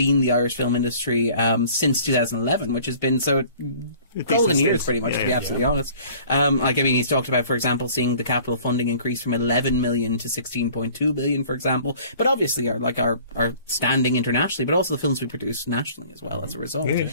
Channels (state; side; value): inverted; both; correlation -0.50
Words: the Irish film industry since 2011, which has been golden years, pretty much, to be absolutely honest. He's talked about, for example, seeing the capital funding increase from 11 million to 16.2 billion, for example. But obviously, our standing internationally, but also the films we produce nationally as well as a result.